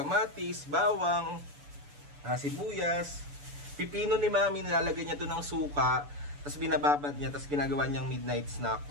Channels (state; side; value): late; left; 6.9 ms